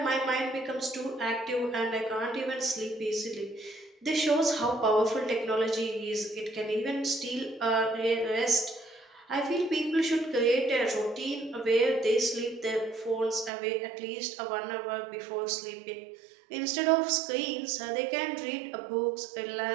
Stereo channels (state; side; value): drops out; left; at 13.5 s